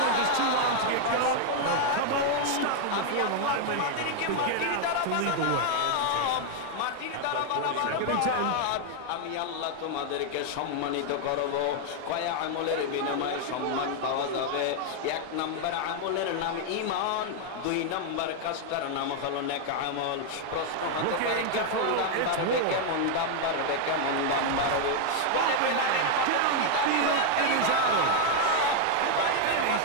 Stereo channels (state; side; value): different; both; correlation 0.00